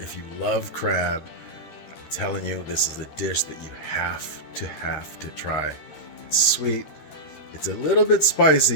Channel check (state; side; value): late; right; 13 ms